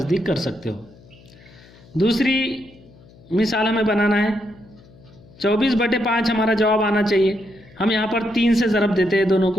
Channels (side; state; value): left; noise; hum, 25 dB below the sound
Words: कर सकते हो। दूसरी मिसाल हमें बनाना है। 24/5 हमारा जवाब आना चाहिए। हम यहाँ पर 3 से ज़रब देते हैं दोनों